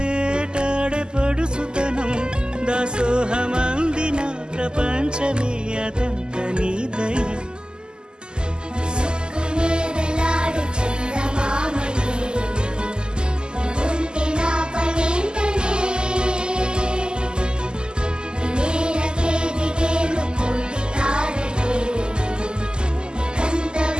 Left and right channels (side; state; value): left; late; 0.047 ms